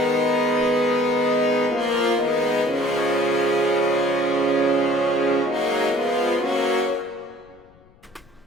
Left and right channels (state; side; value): noise; left; rumble, 30 dB below the sound